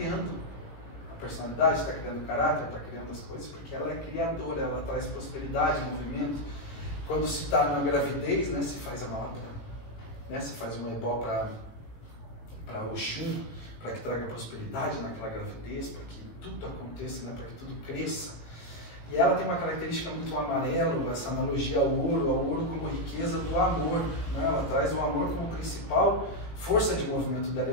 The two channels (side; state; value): right; late; 18 ms